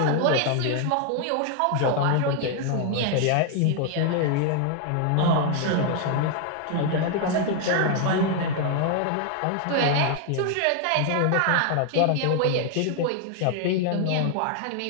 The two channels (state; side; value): different; both; correlation 0.00